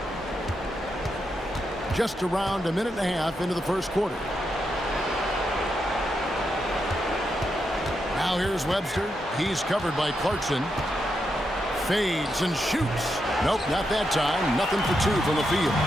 Just around a minute and a half into the first quarter. Now here's Webster. He's covered by Clarkson. Fades and shoots. Nope, not that time. Nothing for 2 from the field.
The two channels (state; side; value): normal; both; correlation 0.84